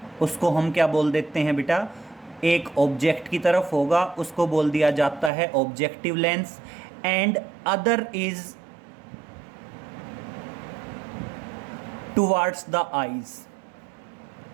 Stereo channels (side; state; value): left; drops out; at 5.3 s